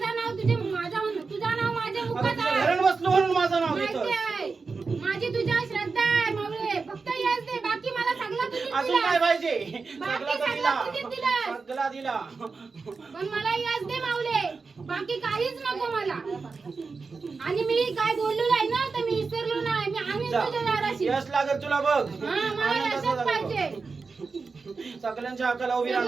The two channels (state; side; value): quieter; left; 4.5 dB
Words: नाव तुझं नाव माझ्या आता मुखात तुझ्या आहे. घरात बसलो म्हणून माझं नाव माहिती घेतो. आहे. माझी तुझ्यावर श्रद्धा आहे माऊली. फक्त यश दे, बाकी मला सगळं तुझीच अजून दिला. काय पाहिजे बाकी सगळा सगळं दिला तुझीच दिलं. सगळा दिला. पण मला यश दे माऊले, बाकी काहीच नको मला. आणि मी काय बोललो नाही ना, तर मी विसरलो नाही. मी आम्ही जा. तुझ्या दाराशी. यश लागेल तुला बघ हा, मला आनंद यशच असा पाहिजे. लागेल. सगळ्यांच्या हाकाला उभी सगळं